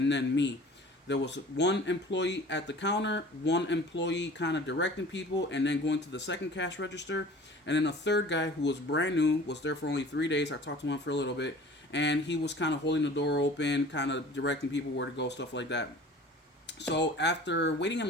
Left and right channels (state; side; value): normal; both; correlation 0.45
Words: then me. There was one employee at the counter, one employee kind of directing people, and then going to the second cash register, and then a third guy who was brand new, was there for only 3 days. I talked to him for a little bit, and he was kind of holding the door open, kind of directing people where to go, stuff like that. So after waiting in